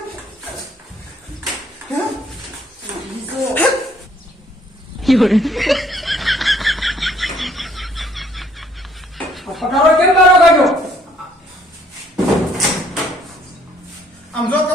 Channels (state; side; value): normal; both; correlation 0.63